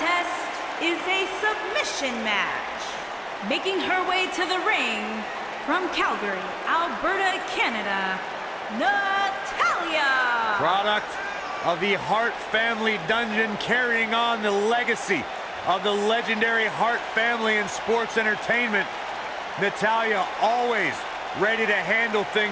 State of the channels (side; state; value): both; identical; correlation 1.00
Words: is a submission match. Making her way to the ring from Calgary, Alberta, Canada, Natalya. Product of the Hart family dungeon, carrying on the legacy of the legendary Hart family in sports entertainment. Natalya always ready to handle